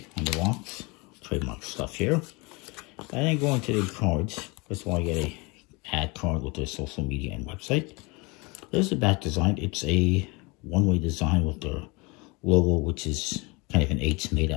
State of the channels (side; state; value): right; quieter; 27.3 dB